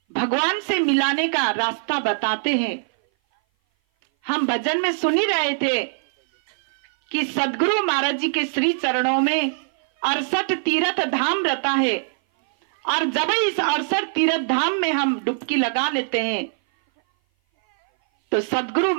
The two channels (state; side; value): silent; left; 58 dB below the other